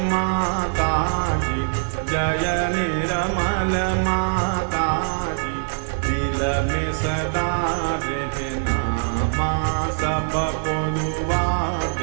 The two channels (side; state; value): left; silent; 64 dB below the other